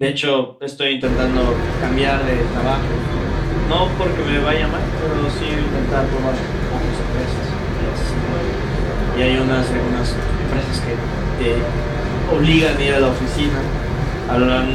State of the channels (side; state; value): both; identical; correlation 1.00